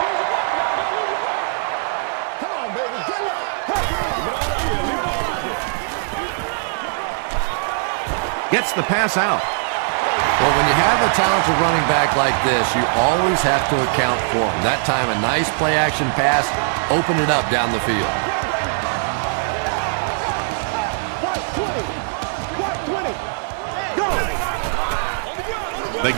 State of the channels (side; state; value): left; silent; digital silence